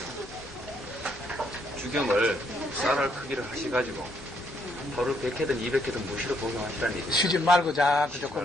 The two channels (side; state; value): both; normal; correlation 0.72